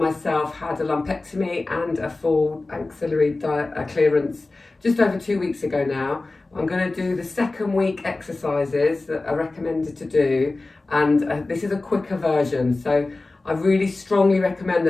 had a lumpectomy and a full axillary clearance just over 2 weeks ago now. I'm going to do the second week exercises that are recommended to do, and this is a quicker version. So I really strongly recommend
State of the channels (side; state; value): right; quieter; 3.2 dB